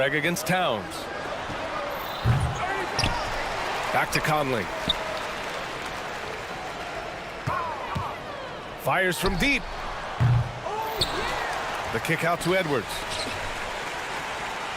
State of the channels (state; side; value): identical; both; correlation 1.00